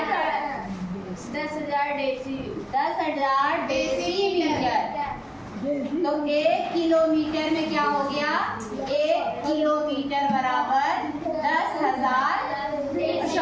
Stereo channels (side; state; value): both; identical; correlation 1.00